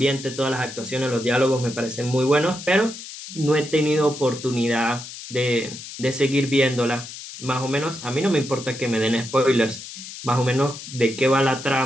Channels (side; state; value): left; noise; hiss, 12 dB below the sound